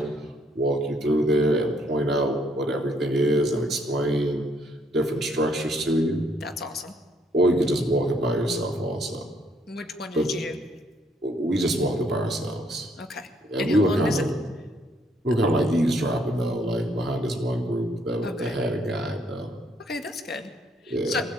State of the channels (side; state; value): both; normal; correlation 0.69